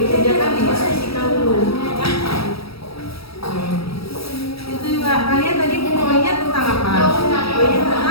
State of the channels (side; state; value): right; late; 0.76 ms